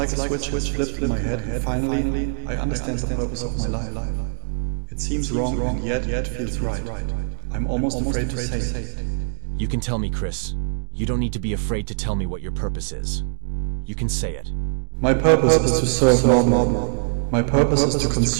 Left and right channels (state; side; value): silent; left; digital silence